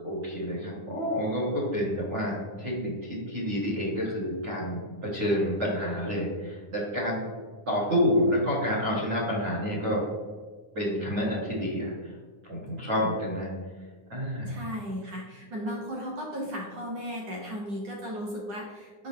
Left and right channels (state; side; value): late; left; 9.8 ms